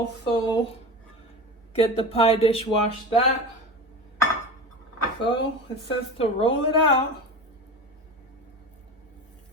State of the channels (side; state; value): both; normal; correlation 0.29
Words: get the pie dish, wash that. So it says to roll it out.